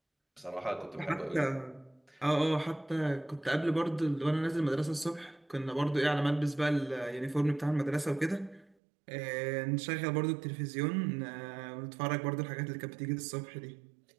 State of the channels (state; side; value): drops out; left; at 8.8 s